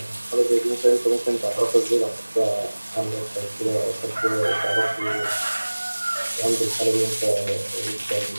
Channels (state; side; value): inverted; both; correlation -1.00